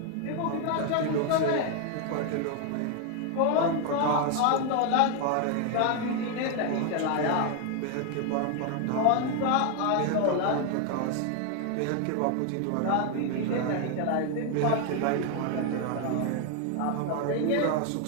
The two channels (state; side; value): different; both; correlation 0.01